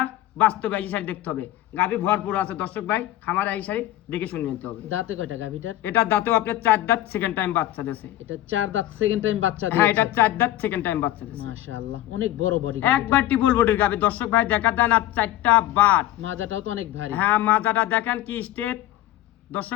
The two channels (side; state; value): right; quieter; 14.3 dB